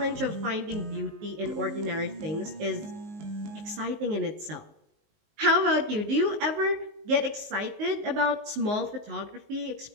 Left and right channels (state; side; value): late; left; 19 ms